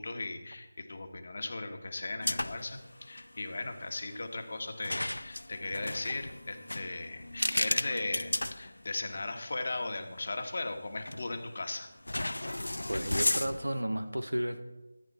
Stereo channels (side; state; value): both; inverted; correlation -0.98